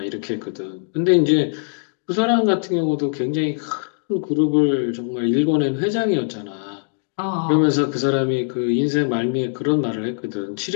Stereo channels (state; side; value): silent; right; digital silence